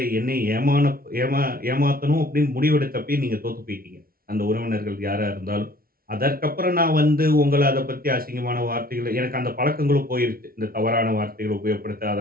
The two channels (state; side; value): late; left; 0.43 ms